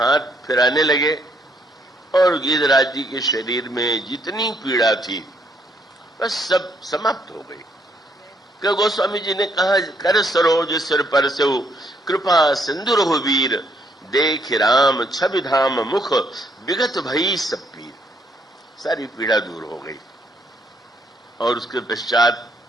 फिराने लगे और गिद्धराज जी के शरीर में जितनी पीड़ा थी बस सब समाप्त हो गई। कि गोस्वामी जी ने कहा, कर सरोज सिर पर से कृपा सिंधु रघुवीर, देख राम छवि धाम मुख विगत भई सब पीर। सारी पीड़ा दूर हो गई। और उसके पश्चात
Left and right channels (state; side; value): normal; both; correlation 0.71